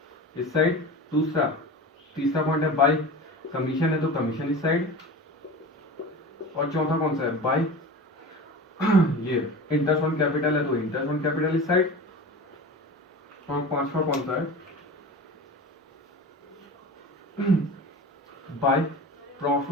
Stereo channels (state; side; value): normal; both; correlation 0.33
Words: इस साइड। दूसरा तीसरा पॉइंट है बाय कमीशन है, तो कमीशन इस साइड। और चौथा कौन सा है, बाय ये इंटरेस्ट ऑन कैपिटल है, तो इंटरेस्ट ऑन कैपिटल इस साइड। और पांचवा कौन सा है, by